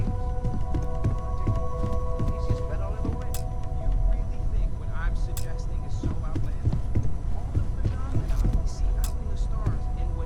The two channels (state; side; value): identical; both; correlation 1.00